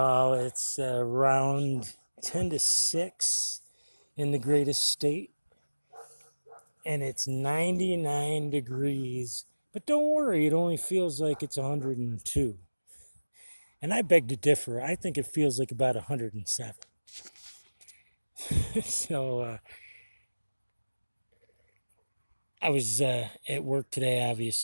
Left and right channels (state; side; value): inverted; both; correlation -1.00